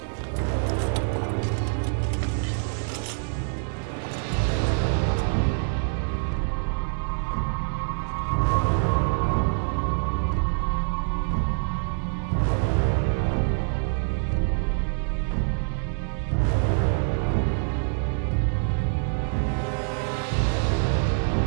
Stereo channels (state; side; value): silent; left; 61 dB below the other